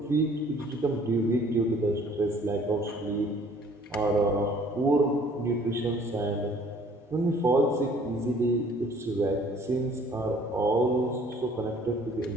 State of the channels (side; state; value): both; normal; correlation 0.56